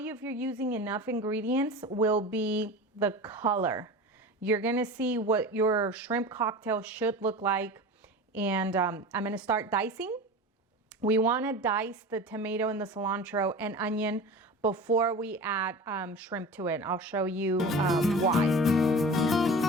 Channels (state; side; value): normal; both; correlation 0.33